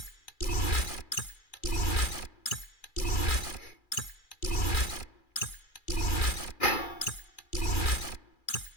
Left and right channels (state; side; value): late; right; 2.4 ms